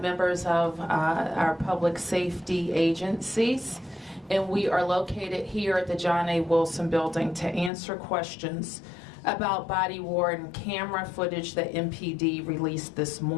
of our public safety agencies, and we are located here at the John A. Wilson Building to answer questions about body-worn camera footage that MPD released this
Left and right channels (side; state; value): right; drops out; at 7.7 s